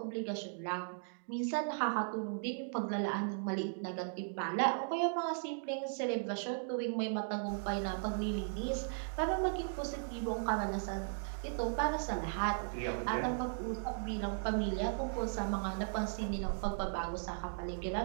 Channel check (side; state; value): left; silent; digital silence